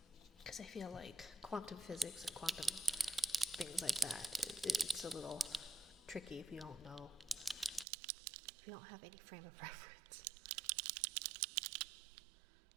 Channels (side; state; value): left; drops out; at 7.9 s